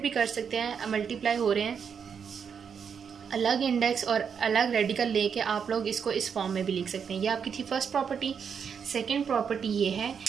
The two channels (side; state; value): left; quieter; 6.9 dB